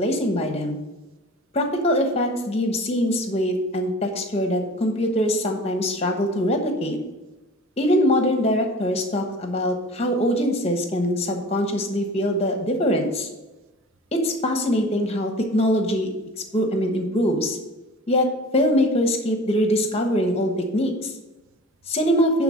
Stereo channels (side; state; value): both; normal; correlation 0.41